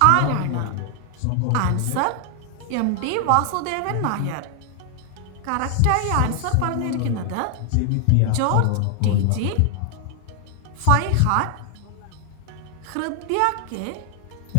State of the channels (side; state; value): both; different; correlation 0.00